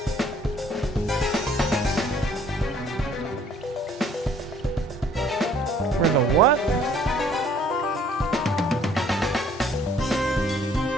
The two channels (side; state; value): both; normal; correlation 0.59